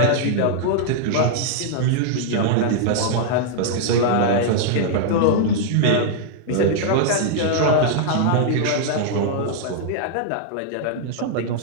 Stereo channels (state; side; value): different; both; correlation -0.01